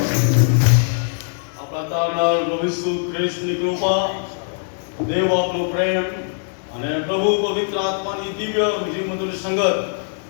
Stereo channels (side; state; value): right; silent; digital silence